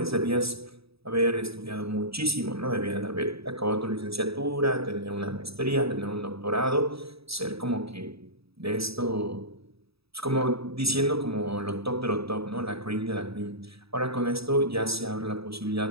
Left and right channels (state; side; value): late; left; 0.77 ms